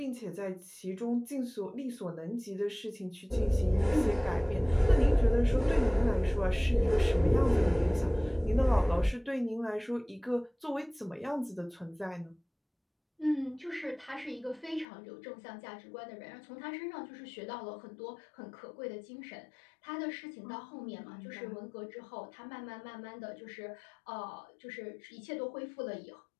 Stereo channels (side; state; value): right; drops out; at 14.9 s